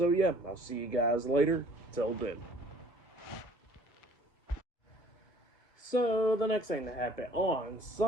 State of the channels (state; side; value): late; right; 1.6 ms